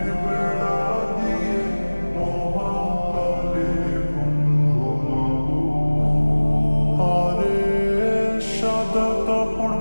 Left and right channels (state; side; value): inverted; both; correlation -1.00